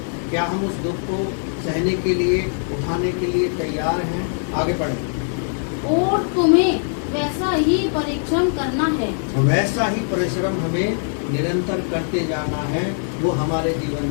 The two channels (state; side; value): silent; right; 65 dB below the other